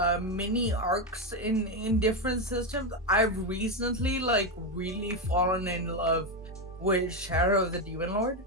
mini arcs in different systems. I've recently like really fallen in love with Shadow of the Demon Lord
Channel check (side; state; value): both; normal; correlation 0.09